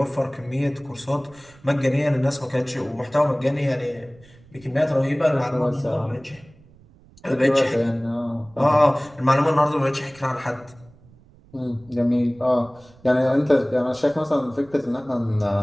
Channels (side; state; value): right; noise; rumble, 26 dB below the sound